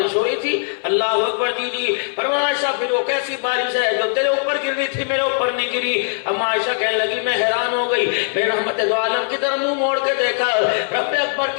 ہو رہی تھی؟ اللہ اکبر جی جی۔ فرمایا عائشہ پھر وہ کیسی بارش ہے جو تیرے اوپر گر رہی تھی میرے اوپر نہیں گری؟ اما عائشہ کہنے لگی میں حیران ہو گئی، میں رحمت دو عالم کی طرف منہ موڑ کے دیکھا، رب اکبر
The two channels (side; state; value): right; silent; 66 dB below the other